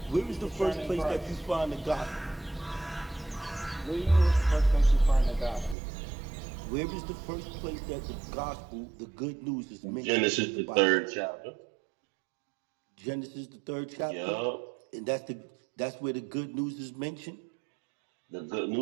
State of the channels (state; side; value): drops out; left; at 5.8 s